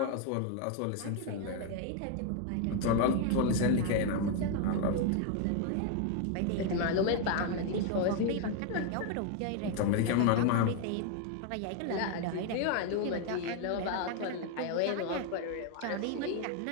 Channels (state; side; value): different; both; correlation 0.01